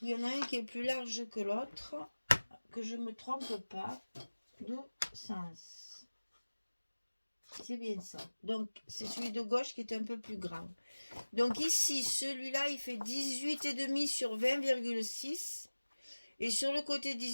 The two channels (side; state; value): both; inverted; correlation -1.00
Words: Il y en a un qui est plus large que l'autre, que je me trompe pas de sens. C'est bien ça. Donc, c'est celui de gauche qui est un peu plus grand. Donc ici, celui-là, il fait 18,5 sur 20,6. Et sur le côté